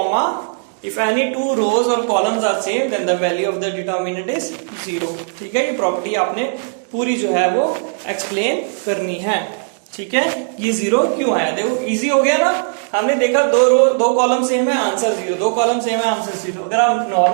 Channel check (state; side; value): silent; left; digital silence